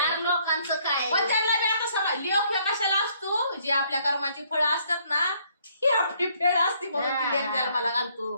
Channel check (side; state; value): both; inverted; correlation -0.66